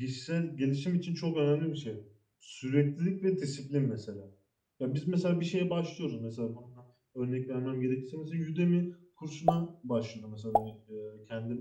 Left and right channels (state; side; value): identical; both; correlation 1.00